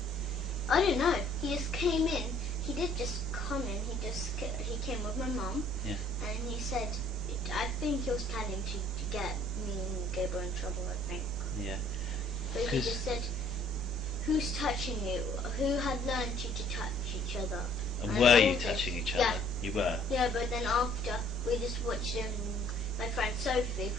I don't know. He just came in. He did just come in. He came with my mum. Yeah. And he said, I think he was planning to get me and Gabriel in trouble, I think. Yeah. But he 'Cause- just said, "Who's touching you? Who had learned you to touch each other?" And I were told you him. touching each other? Yeah. You were. Yeah, but then after we just watched my friend Sophie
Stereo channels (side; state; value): both; normal; correlation 0.59